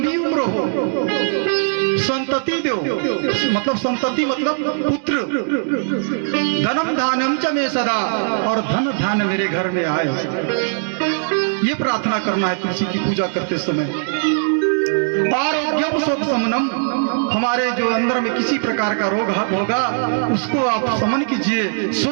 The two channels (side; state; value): left; silent; digital silence